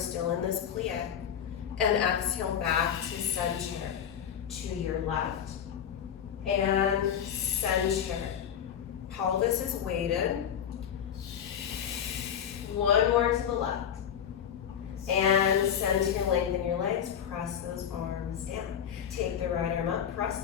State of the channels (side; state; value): right; quieter; 8.7 dB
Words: in this plie. And exhale back to center. To your left. And center. Pelvis is weighted. One more to the left. And center, lengthen your legs. Press those arms down. Take the right arm up. Press